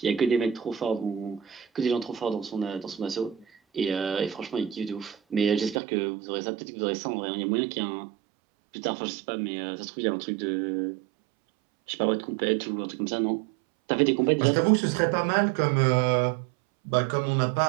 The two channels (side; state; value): left; drops out; at 5.8 s